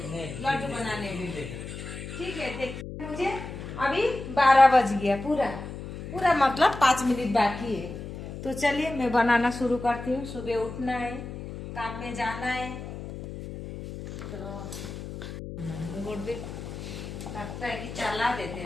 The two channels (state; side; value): noise; left; hum, 9 dB below the sound